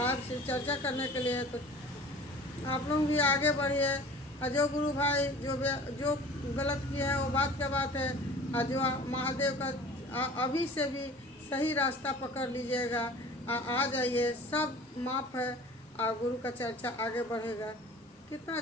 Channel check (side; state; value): both; normal; correlation 0.43